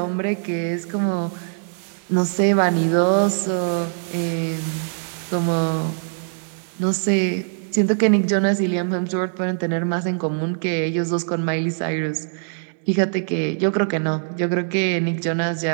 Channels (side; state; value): left; silent; digital silence